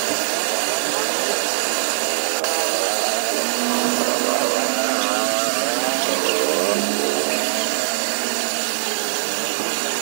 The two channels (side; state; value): left; silent; digital silence